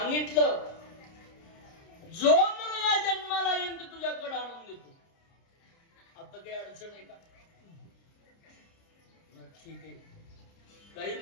जो मुलगा जन्माला येईल ते तुझ्याकडे आणून देतो. आता काही अडचण आहे का? ठीक आहे. काही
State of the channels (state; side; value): late; right; 30 ms